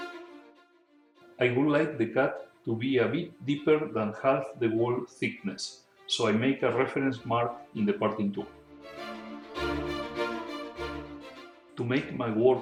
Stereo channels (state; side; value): identical; both; correlation 1.00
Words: I would like the cut to be a bit deeper than half the wall thickness, so I make a reference mark in the parting tool. To make my